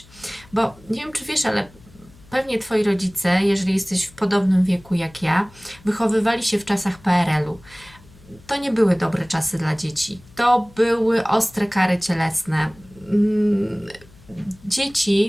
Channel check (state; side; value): noise; left; hum, 25 dB below the sound